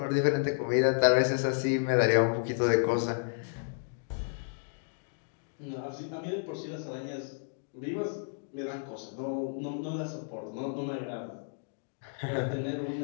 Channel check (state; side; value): silent; right; digital silence